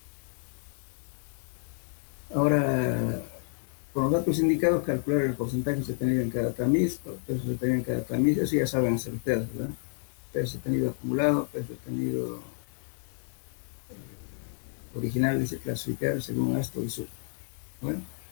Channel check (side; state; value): right; silent; 58 dB below the other